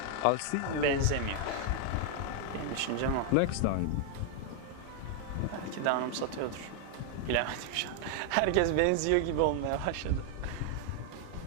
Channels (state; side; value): different; both; correlation 0.00